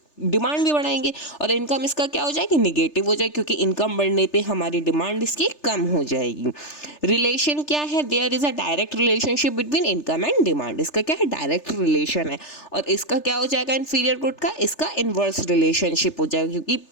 डिमांड भी बढ़ाएंगे, और इनकम इसका क्या हो जाएगी, निगेटिव हो जाएगी, क्योंकि इनकम बढ़ने पे हमारी डिमांड इसकी कम हो जाएगी। रिलेशन क्या है, there is a direct relationship between income and demand. इसका क्या है, डायरेक्ट रिलेशन है। और इसका क्या हो जाएगा, इंफीरियर गुड का, इसका इनवर्स रिलेशनशिप हो जाएगा, क्योंकि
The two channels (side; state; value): right; late; 3.3 ms